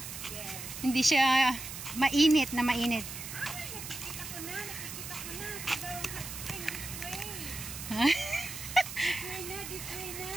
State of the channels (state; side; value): noise; right; hiss, 9 dB below the sound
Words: Yes. Hindi siya mainit na mainit. Ay, nakikita ko na. Simbawang hot spring, this way. Ha? This way na.